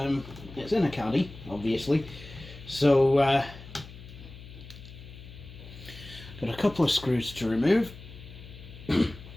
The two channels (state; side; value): noise; left; hum, 16 dB below the sound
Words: a caddy, obviously. So, got a couple of screws to remove.